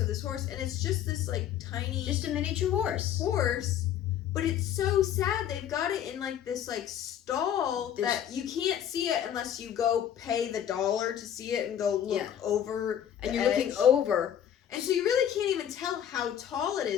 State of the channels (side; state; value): right; quieter; 9.9 dB